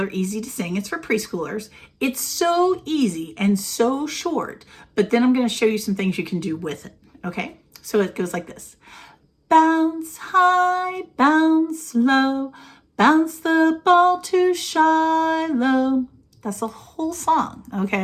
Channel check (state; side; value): identical; both; correlation 1.00